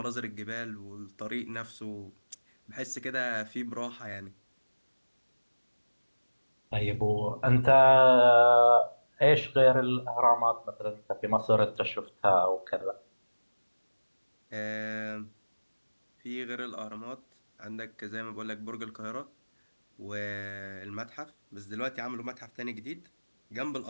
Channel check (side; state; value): both; inverted; correlation -1.00